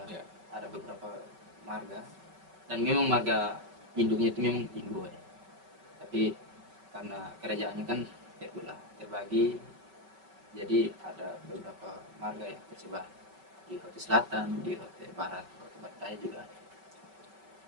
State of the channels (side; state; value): left; late; 5.3 ms